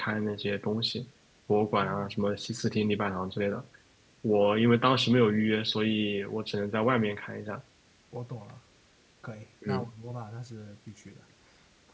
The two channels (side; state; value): both; identical; correlation 1.00